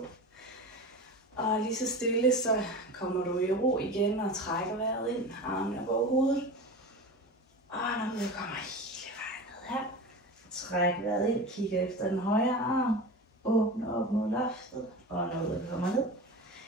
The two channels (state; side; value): normal; both; correlation 0.30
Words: Og lige så stille, så kommer du i ro igen og trækker vejret ind. Armene op over hovedet. Og når du kommer hele vejen ned her. Træk vejret ind, kigger efter den højre arm. Åbne op mod loftet. Og når du kommer ned.